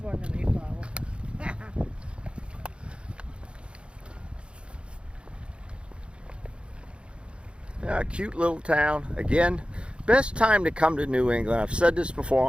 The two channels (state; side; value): late; left; 0.057 ms